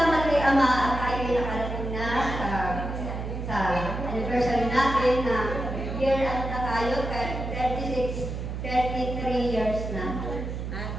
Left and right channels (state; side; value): noise; right; hum, 5 dB below the sound